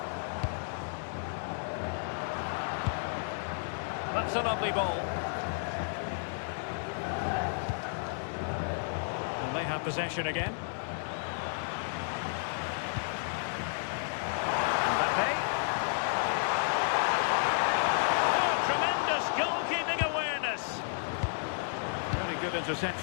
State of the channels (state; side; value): silent; right; digital silence